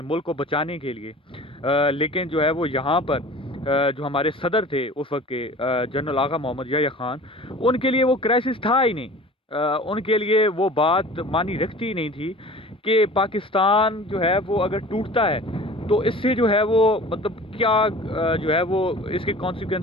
मुल्क को बचाने के लिए। लेकिन जो है वो यहाँ पर जो हमारे सदर थे उस वक्त के जनरल आगा मोहम्मद याह्या खान, उनके लिए वो क्राइसिस था ही नहीं। उनके लिए वो बात मानी रखती ही नहीं थी کہ پاکستان جو ہے وہ اگر ٹوٹتا ہے تو اس سے جو ہے وہ مطلب کیا جو ہے وہ اس کے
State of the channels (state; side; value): normal; both; correlation 0.42